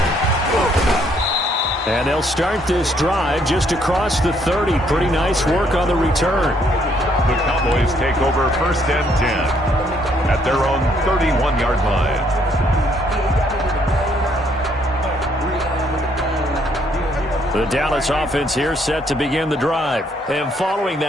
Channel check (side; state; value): both; normal; correlation 0.68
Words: And they'll start this drive just across the 30. Pretty nice work on the return. The Cowboys take over 1st and 10 at their own 31-yard line. The Dallas offense here set to begin the drive. And following